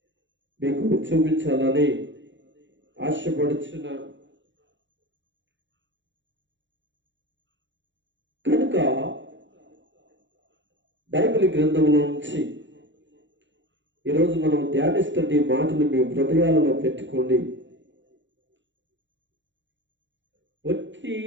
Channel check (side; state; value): left; late; 0.54 ms